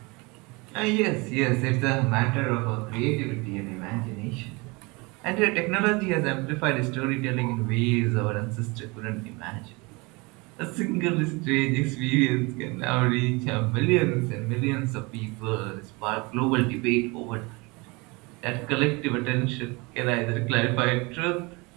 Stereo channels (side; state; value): left; quieter; 26.4 dB